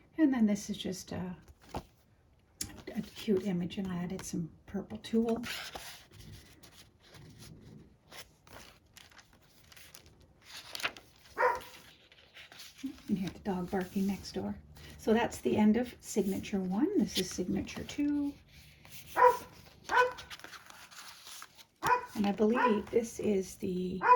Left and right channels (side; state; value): both; identical; correlation 1.00